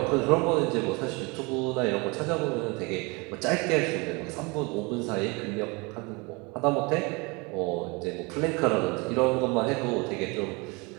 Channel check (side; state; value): left; quieter; 27.8 dB